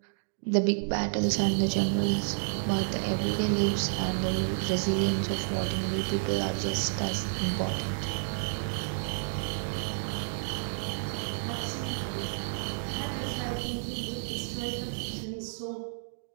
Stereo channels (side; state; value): left; silent; digital silence